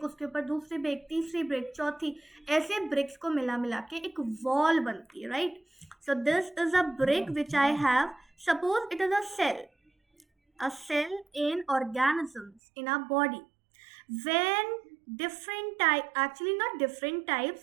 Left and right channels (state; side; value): drops out; left; at 12.6 s